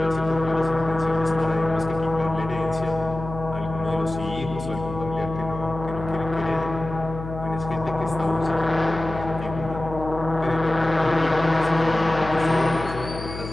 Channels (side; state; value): left; noise; hum, 10 dB below the sound